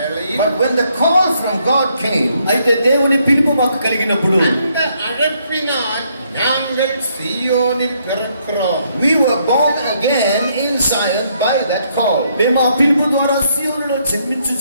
But when the call from God came, అయితే దేవుని పిలుపు మాకు కలిగినప్పుడు அந்த அழைப்பினால் நாங்கள் சீயோனில் பிறக்கிறோம். we were born again in Zion by that call. మేము ఆ పిలుపు ద్వారా సియోనులో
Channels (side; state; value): both; inverted; correlation -0.72